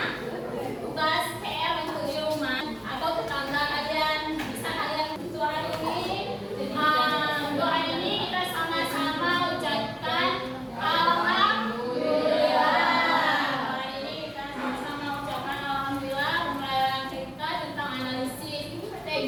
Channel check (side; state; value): both; identical; correlation 1.00